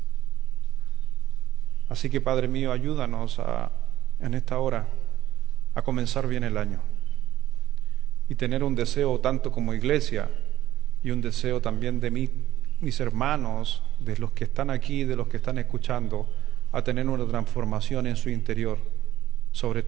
Así que, Padre mío, ayúdanos en esta hora a comenzar bien el año y tener un deseo tanto como iglesia y un deseo también de mis hermanos, de los que están aquí, de los que están escuchando, a tener una transformación en su interior sobre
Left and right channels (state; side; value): quieter; left; 13.6 dB